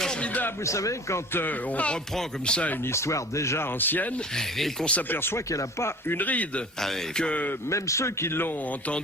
vous savez, quand on reprend comme ça une histoire déjà ancienne et qu'on s'aperçoit qu'elle n'a pas une ride. Ah oui, que même ceux qui l'ont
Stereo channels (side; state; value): both; normal; correlation 0.42